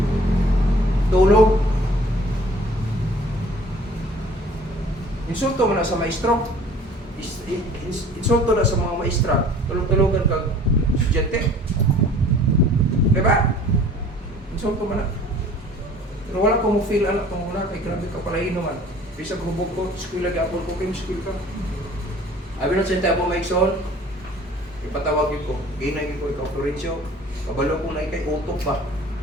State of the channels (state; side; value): normal; both; correlation 0.50